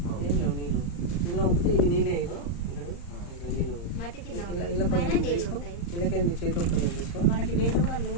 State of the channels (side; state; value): right; late; 35 ms